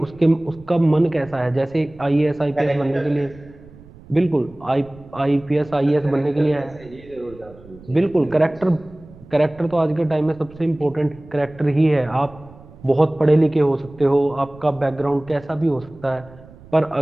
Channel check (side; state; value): right; noise; rumble, 21 dB below the sound